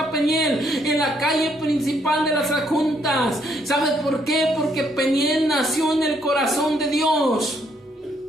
Peniel? En la calle principal de las Adjuntas. ¿Sabes por qué? Porque Peniel nació en el corazón de Dios.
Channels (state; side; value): normal; both; correlation 0.71